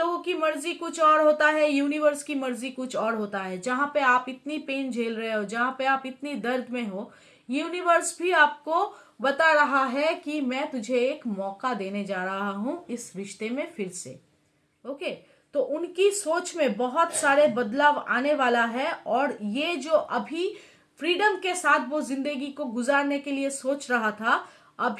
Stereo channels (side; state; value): both; identical; correlation 1.00